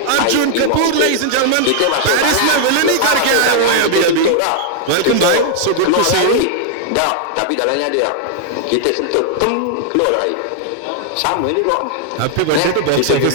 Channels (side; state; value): both; different; correlation -0.01